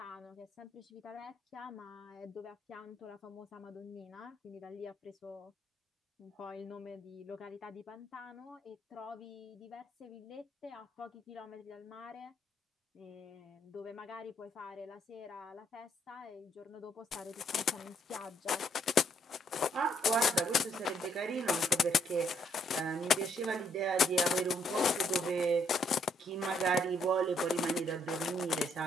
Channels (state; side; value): normal; both; correlation 0.70